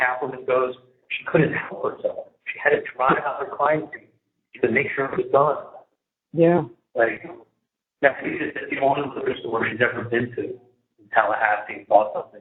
goes, she couldn't help herself. She had to drive out her crime scene to make sure it was done. Yeah. Like, that's the only liquor store she's ever been to in Tallahassee and bought something.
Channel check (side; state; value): both; identical; correlation 1.00